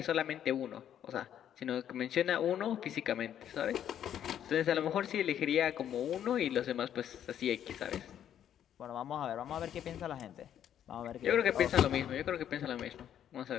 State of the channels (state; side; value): quieter; right; 10.1 dB